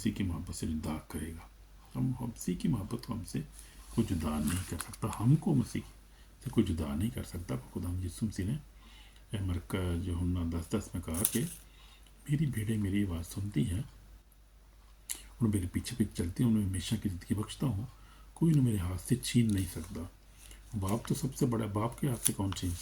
की मोहब्बत से जुदा करेगा। हम मसीह की मोहब्बत को हमसे कोई जुदा नहीं कर सकता, हमको मसीह से कोई जुदा नहीं कर सकता। खुदा यीशु मसीह ने मरका यूहन्ना 10:10 में कहा कि मेरी भेड़ें मेरी आवाज़ सुनती हैं और मेरे पीछे पीछे चलती हैं, उन्हें हमेशा की ज़िंदगी बख्शता हूँ, कोई उन्हें मेरे हाथ से छीन नहीं सकता। बाप तो सबसे बड़ा, बाप के हाथ से कौन छीन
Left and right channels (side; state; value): both; identical; correlation 1.00